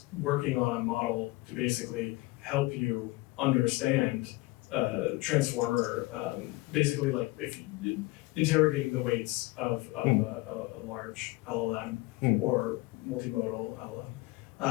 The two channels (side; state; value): right; quieter; 21.2 dB